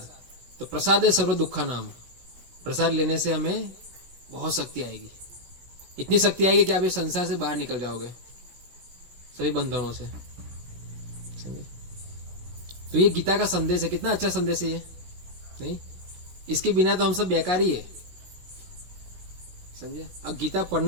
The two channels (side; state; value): left; late; 17 ms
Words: तो प्रसाद है सर्व दुखा नाम। प्रसाद लेने से हमें बहुत शक्ति आएगी। इतनी शक्ति आएगी कि आप इस संसार से बाहर निकल जाओगे, सभी बंधनों से। समझे? तो ये गीता का संदेश है। कितना अच्छा संदेश है ये, नहीं? इसके बिना तो हम सब बेकार ही है। समझे? अब गीता